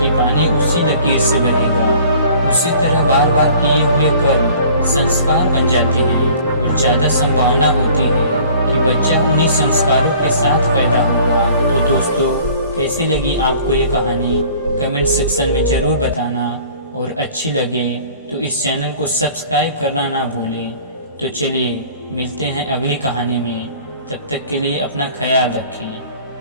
पानी उसी लकीर से बहेगा। उसी तरह बार बार किए हुए कर्म संस्कार बन जाते हैं और ज़्यादा संभावना होती है कि बच्चा उन्हीं संस्कारों के साथ पैदा होगा। तो दोस्तों, कैसी लगी आपको ये कहानी कमेंट सेक्शन में ज़रूर बताना, और अच्छी लगे तो इस चैनल को सब्सक्राइब करना ना भूलें। तो चलिए मिलते हैं अगली कहानी में, तब तक के लिए अपना ख्याल रखें।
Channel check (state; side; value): inverted; both; correlation -0.50